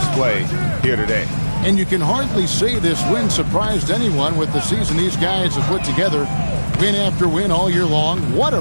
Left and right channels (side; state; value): both; inverted; correlation -1.00